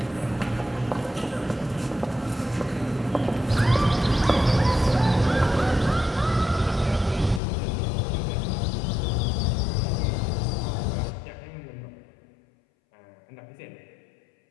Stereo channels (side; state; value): right; drops out; at 7.4 s